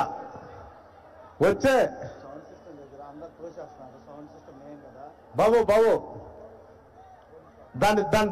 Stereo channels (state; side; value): identical; both; correlation 1.00